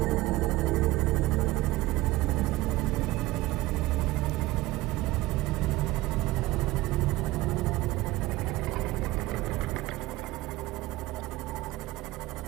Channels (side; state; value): left; quieter; 18.5 dB